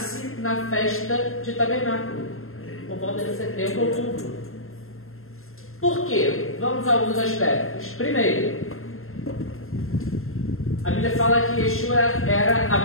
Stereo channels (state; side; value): late; right; 0.61 ms